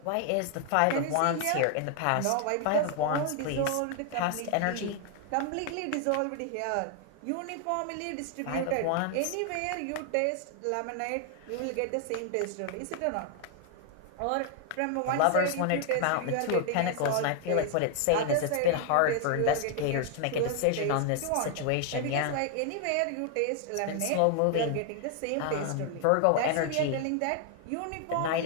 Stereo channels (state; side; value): different; both; correlation 0.00